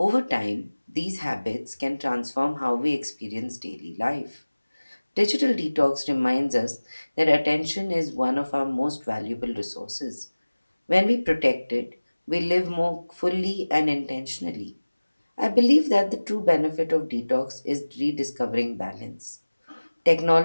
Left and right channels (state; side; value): inverted; both; correlation -1.00